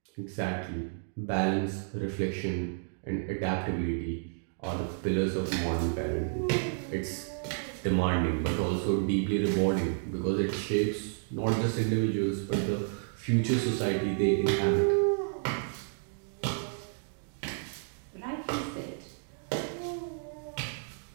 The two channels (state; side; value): silent; left; digital silence